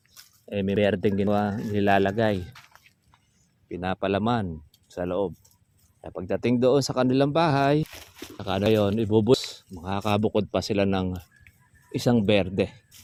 May berdeng ginawa nilalagay. Pinapalaman sa loob. Kaya pagdating doon sa kanilang bahay, saka na yun, ibubus. Makakabukod pa sila ng isang berde.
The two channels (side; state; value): both; identical; correlation 1.00